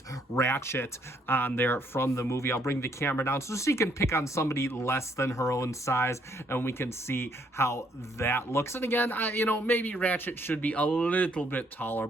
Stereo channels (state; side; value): normal; both; correlation 0.68